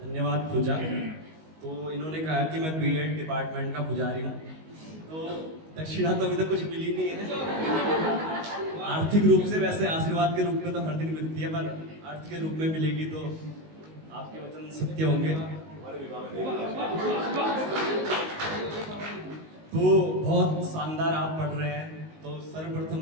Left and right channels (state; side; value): late; left; 19 ms